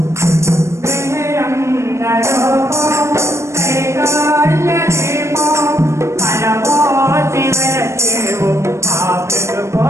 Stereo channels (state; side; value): late; left; 0.13 ms